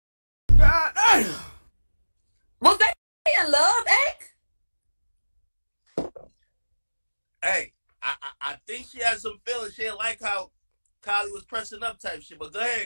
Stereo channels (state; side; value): inverted; both; correlation -1.00